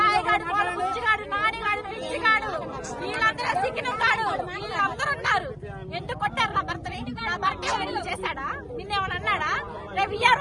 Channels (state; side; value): identical; both; correlation 1.00